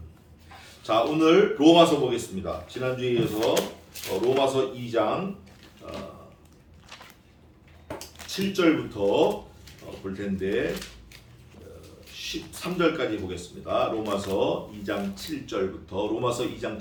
자, 오늘 로마서 보겠습니다. 지난주에 이어서 로마서 2장 7절부터 볼 텐데 13절까지 보겠습니다. 로마서 2장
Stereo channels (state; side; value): identical; both; correlation 1.00